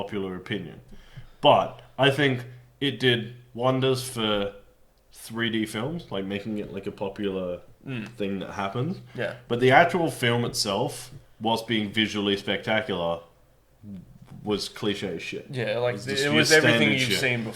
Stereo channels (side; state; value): both; identical; correlation 1.00